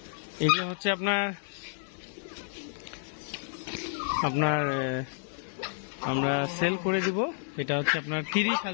এগুলো হচ্ছে আপনার আমরা সেল করে দিব। এটা হচ্ছে আপনার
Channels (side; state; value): right; silent; digital silence